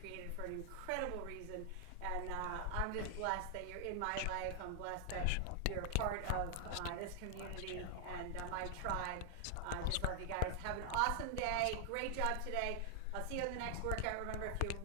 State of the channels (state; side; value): different; both; correlation 0.00